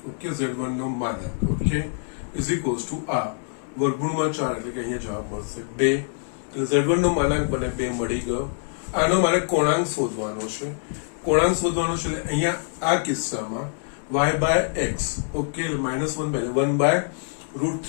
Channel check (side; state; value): right; silent; 62 dB below the other